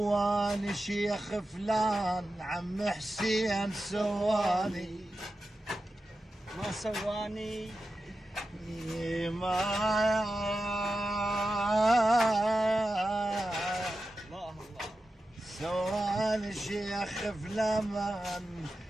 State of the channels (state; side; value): normal; both; correlation 0.92